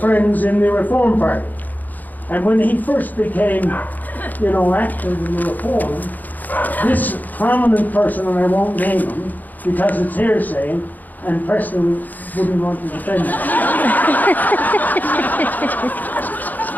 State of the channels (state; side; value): late; right; 0.083 ms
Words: in the Reform Party. And when he first became, active in the Reform, this prominent person, and I won't name him because it's hearsay, and Preston wouldn't want to defend him.